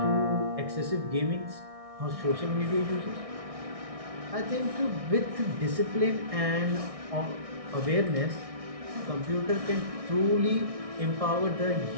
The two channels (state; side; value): late; left; 1.6 ms